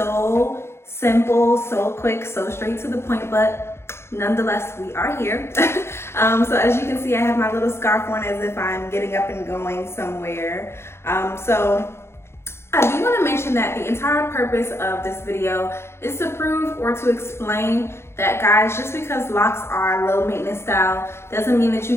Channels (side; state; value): right; late; 0.12 ms